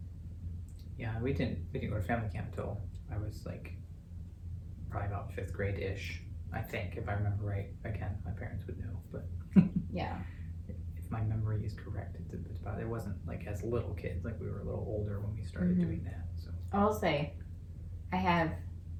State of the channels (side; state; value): both; identical; correlation 1.00